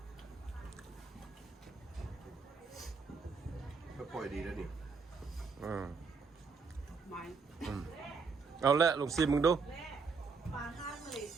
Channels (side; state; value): left; quieter; 4.9 dB